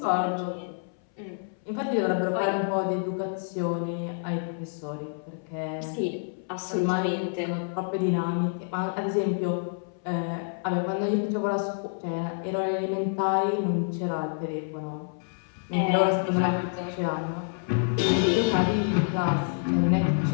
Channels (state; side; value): silent; right; 59 dB below the other